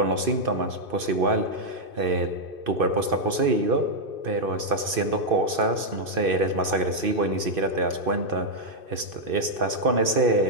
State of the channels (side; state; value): left; late; 2.6 ms